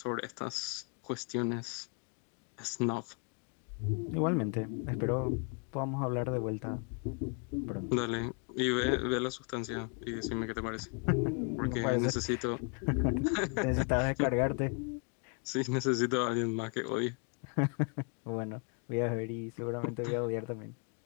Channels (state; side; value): quieter; right; 36.9 dB